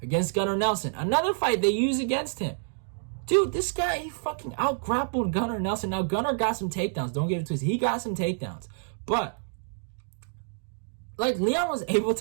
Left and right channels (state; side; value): silent; left; digital silence